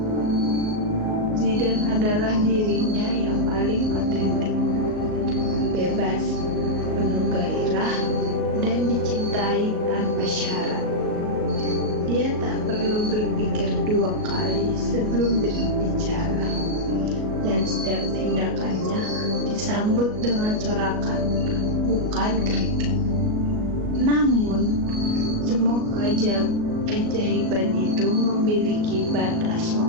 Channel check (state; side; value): late; left; 38 ms